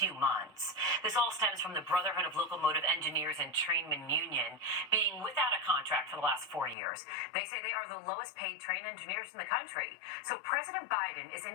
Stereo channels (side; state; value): right; drops out; at 6.8 s